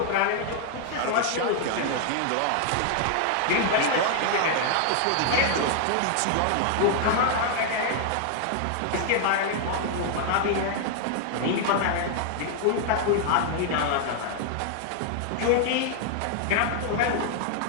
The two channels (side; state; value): both; different; correlation 0.00